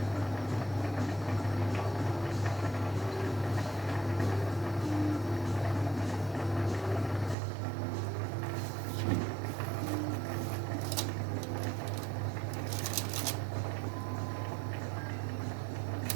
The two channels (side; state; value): left; drops out; at 7.4 s